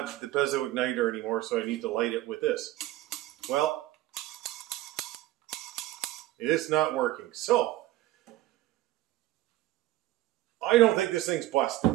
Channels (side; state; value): left; quieter; 16.1 dB